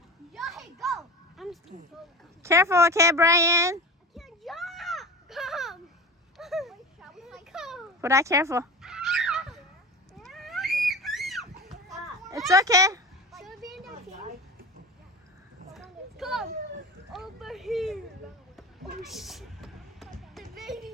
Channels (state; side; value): normal; both; correlation 0.30